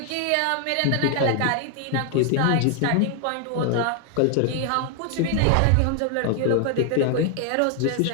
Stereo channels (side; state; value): both; different; correlation 0.00